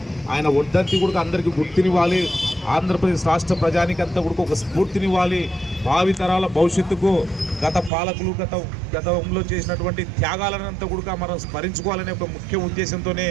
ఆయన వర్ధంతి కూడా అందరికీ గుర్తునివ్వాలి, ఆంధ్రప్రదేశ్ రాష్ట్ర ప్రజానికంతా కూడా ఒక స్ఫూర్తినివ్వాలి, భావితరాల భవిష్యత్తుకు గత పాలకులు గతంలో చేసినటువంటి త్యాగాలనంతా కూడా మనం స్మరించుకోవాలనే ఒక ముఖ్య ఉద్దేశంతోనే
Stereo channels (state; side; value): drops out; left; at 7.9 s